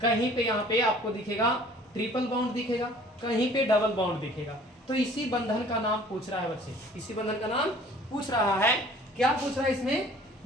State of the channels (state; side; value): normal; both; correlation 0.51